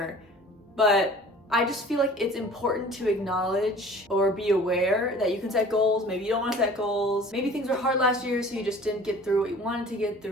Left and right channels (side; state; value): both; normal; correlation 0.47